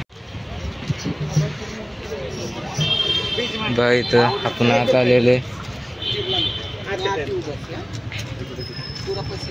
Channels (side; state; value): both; identical; correlation 1.00